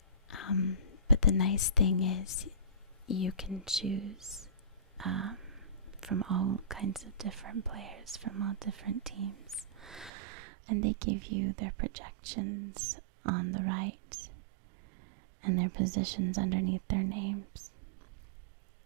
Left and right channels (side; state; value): left; drops out; at 10.1 s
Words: But the nice thing is you can choose from all kinds of different players from all different teams. And they give you their projections on the right and their positions underneath their names.